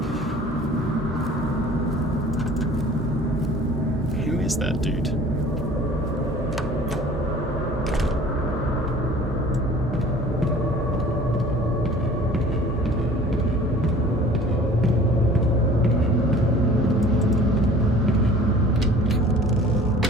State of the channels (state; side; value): normal; both; correlation 0.47